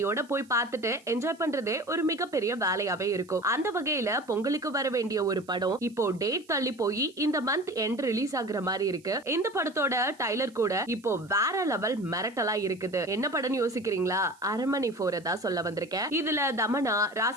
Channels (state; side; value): noise; right; hiss, 28 dB below the sound